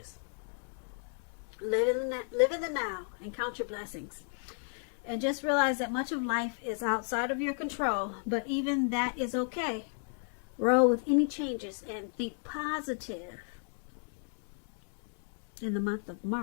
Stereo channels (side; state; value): right; silent; 55 dB below the other